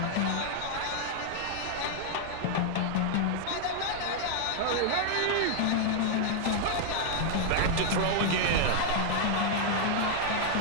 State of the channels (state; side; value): different; both; correlation 0.00